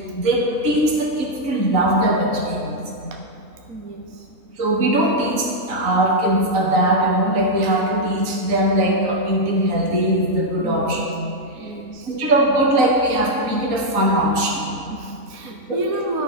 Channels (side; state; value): left; late; 3.9 ms